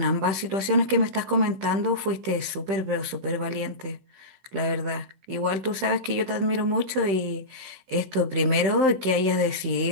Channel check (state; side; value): late; left; 15 ms